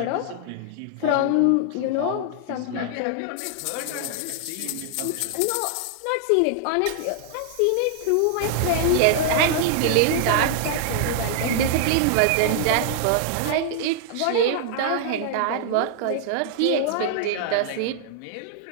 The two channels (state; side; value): different; both; correlation 0.00